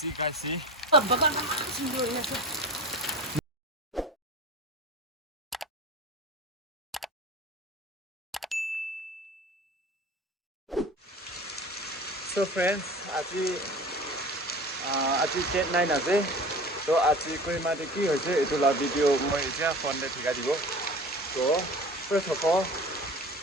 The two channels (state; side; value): normal; both; correlation 0.37